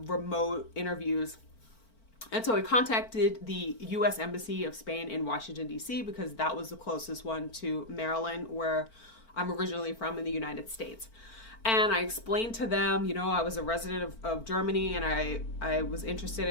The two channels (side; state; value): right; late; 4.4 ms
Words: remote interviews. And so I contacted the U.S. Embassy of Spain in Washington, D.C., because that was the closest one to Maryland, where I'm originally from in the United States. And I explained to them, you know, I was a resident of Germany, and I was interested